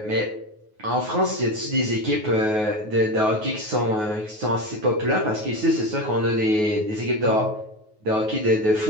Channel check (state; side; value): late; left; 9.4 ms